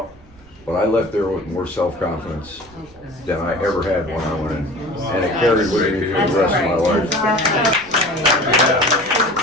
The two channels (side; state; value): right; noise; rumble, 25 dB below the sound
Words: But I left there with more self-confidence than I ever had when I went in. And it carried with me for the rest of my life.